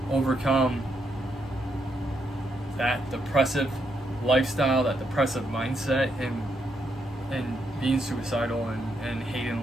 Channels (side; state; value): both; normal; correlation 0.79